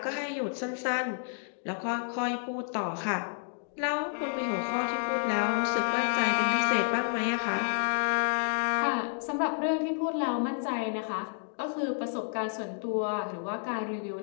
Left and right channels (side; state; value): right; silent; digital silence